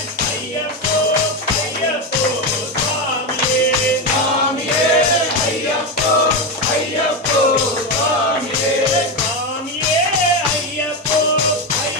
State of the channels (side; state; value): both; normal; correlation 0.13